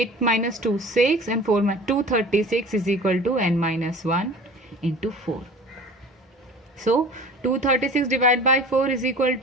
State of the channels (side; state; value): both; normal; correlation 0.42